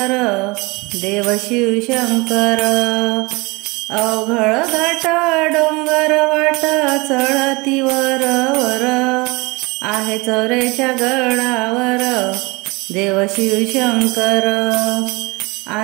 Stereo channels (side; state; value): left; quieter; 25.2 dB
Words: देव शिवशंकर. अवघड घाट डोंगर वाट चढती वर वर, आहे चौऱ्याच्या गडावर देव शिवशंकर,